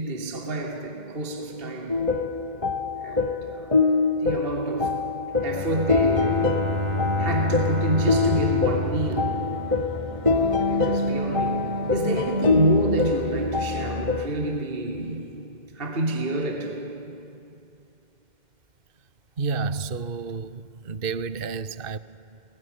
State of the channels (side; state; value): left; late; 2.1 ms